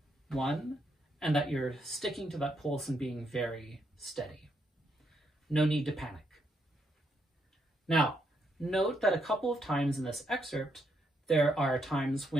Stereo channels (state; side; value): normal; both; correlation 0.77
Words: 1, and that you're sticking to that pulse and being very steady. No need to panic. Now, note that a couple of times in this excerpt, there are times